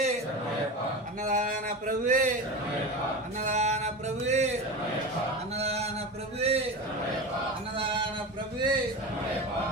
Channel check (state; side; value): normal; both; correlation 0.25